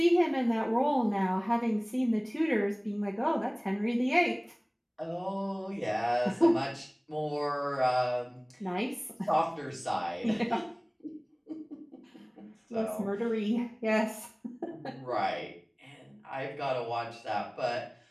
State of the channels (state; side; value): identical; both; correlation 1.00